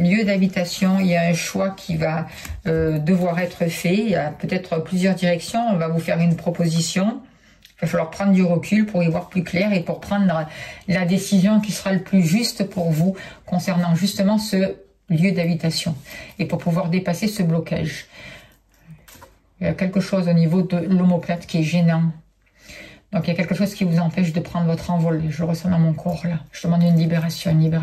d'habitation, il y a un choix qui va devoir être fait. Il y a peut-être plusieurs directions. On va vous faire une proposition. Il va falloir prendre du recul pour y voir plus clair et pour prendre la décision qui sera le plus juste pour vous concernant justement ce lieu d'habitation et pour pouvoir dépasser ce blocage. Il y a quelque chose au niveau de l'omoplate qui est gênant. Donc il y a quelque chose qui vous empêche de prendre votre envol. Je le ressens dans mon corps là. Je demande une libération, une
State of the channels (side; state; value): both; identical; correlation 1.00